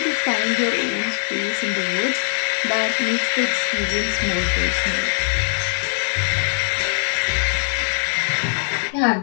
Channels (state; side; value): silent; right; digital silence